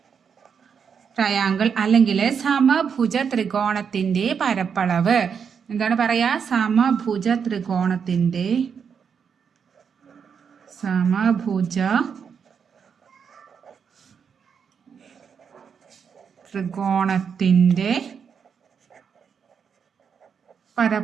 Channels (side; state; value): left; quieter; 6.8 dB